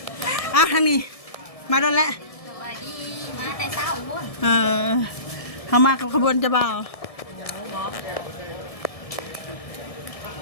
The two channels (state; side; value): late; right; 1.7 ms